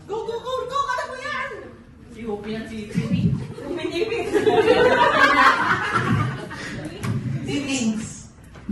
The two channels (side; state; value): both; identical; correlation 1.00